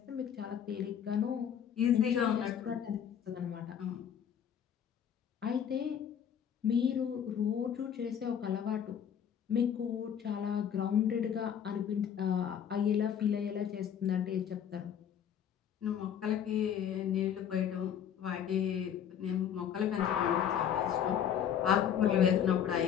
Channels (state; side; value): quieter; right; 8.8 dB